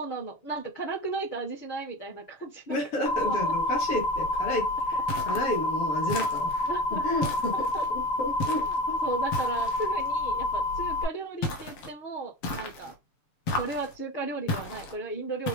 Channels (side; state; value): right; late; 6.8 ms